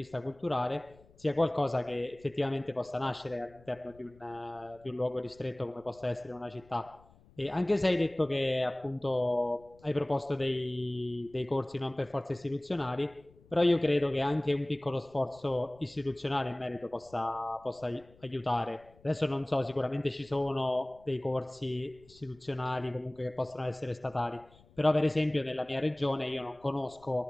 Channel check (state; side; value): noise; left; rumble, 27 dB below the sound